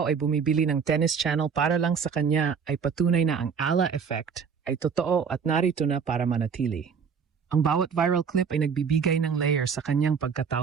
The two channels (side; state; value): left; quieter; 6.3 dB